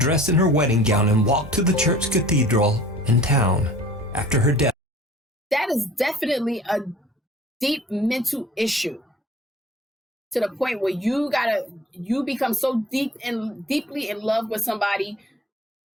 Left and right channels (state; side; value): normal; both; correlation 0.48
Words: in her wedding gown and walk to the church cathedral in town. After her death, that is definitely a deep mental issue, to the point where you become so deeply in love with somebody,